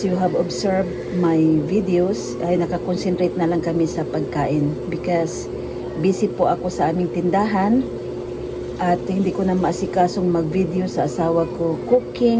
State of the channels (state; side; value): identical; both; correlation 1.00